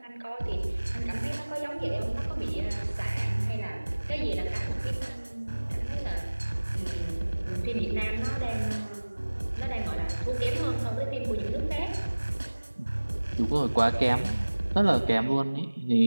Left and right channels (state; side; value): inverted; both; correlation -1.00